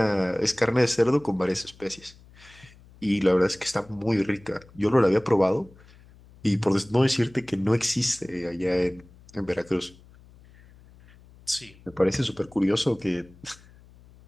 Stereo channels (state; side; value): noise; left; hum, 25 dB below the sound